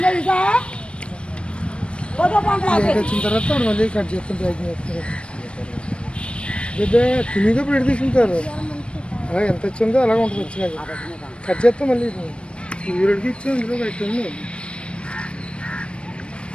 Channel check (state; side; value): late; right; 0.058 ms